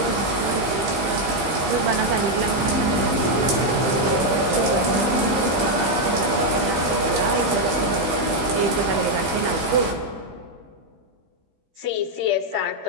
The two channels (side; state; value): left; late; 15 ms